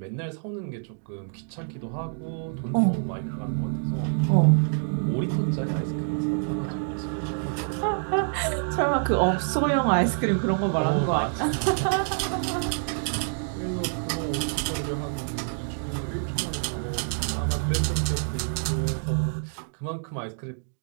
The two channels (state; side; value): silent; left; digital silence